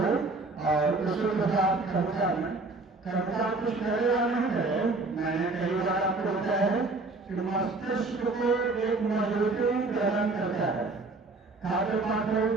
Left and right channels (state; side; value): quieter; left; 3.5 dB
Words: और उसी के साथ कविता में कविता कुछ कहे या नहीं कहे, मैंने कई बार आपको बताया है कि मस्तिष्क को एक मजबूती प्रदान करता है, खाते पाते